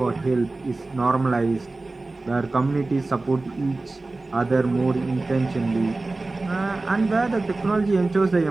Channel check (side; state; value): left; quieter; 3.2 dB